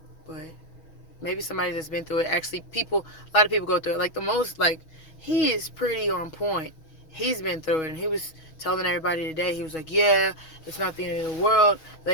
But maybe somebody that's been through it. Actually, a lot of people go through it. Like, the most, like, he is pretty on point. He's been through it, and he was telling everybody today, he was like, yeah, it's not the end of the world.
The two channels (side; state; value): right; late; 6.2 ms